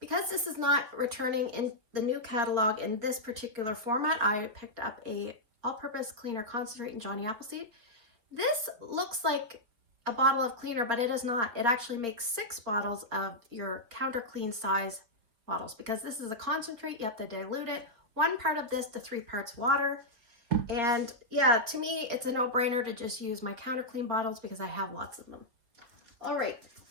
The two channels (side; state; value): left; late; 4.3 ms